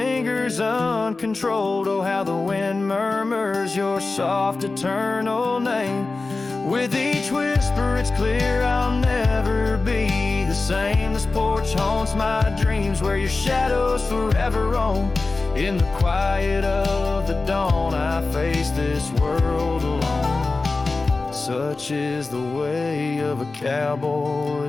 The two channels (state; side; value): quieter; right; 3.6 dB